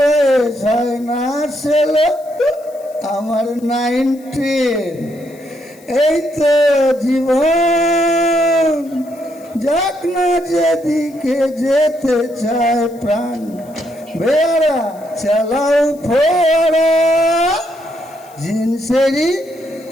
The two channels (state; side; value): noise; left; hiss, 27 dB below the sound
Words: হয় না ছেলে, আমার 19, এই তো জীবন। যাক না যেদিকে যেতে চায় প্রাণ, বেড়া চালাও ফোড়া জিন্সেরই